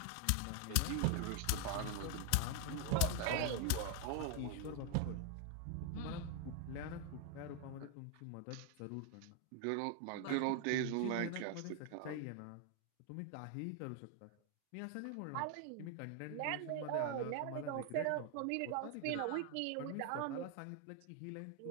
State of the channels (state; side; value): different; both; correlation 0.01